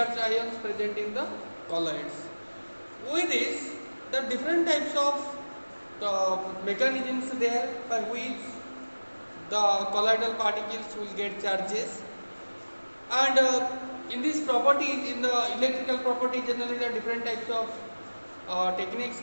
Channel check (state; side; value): inverted; both; correlation -1.00